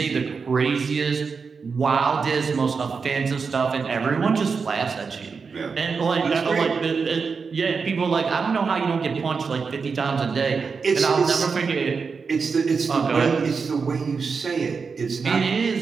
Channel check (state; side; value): quieter; left; 5.2 dB